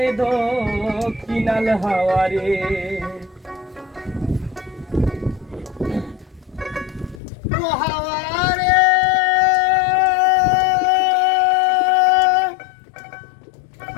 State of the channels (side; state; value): right; drops out; at 7.2 s